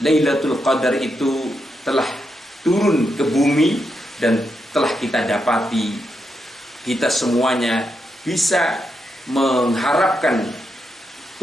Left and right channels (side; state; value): both; normal; correlation 0.83